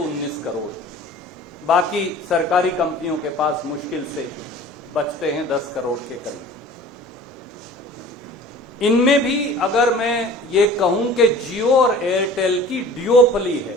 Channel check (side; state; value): both; normal; correlation 0.44